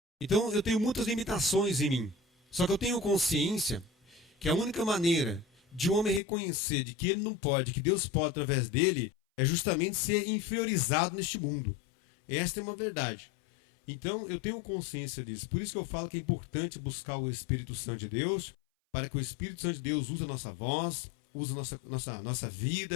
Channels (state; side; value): drops out; right; at 6.2 s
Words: Então eu tenho muitas limitações em mim. Só que eu tenho consciência que a única maneira de um homem reconhecer de que ele não pode, que Deus pode através dele, é justamente ser inferiorizado neste mundo. Esta é uma verdade. Então eu tenho consciência disso. Por isso que eu falo que é importante buscar o Espírito Santo de Deus, para que o Espírito Santo de Deus use a nossa voz, use a nossa